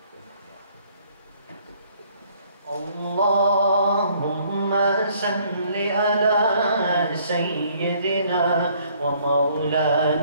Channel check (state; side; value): inverted; both; correlation -0.62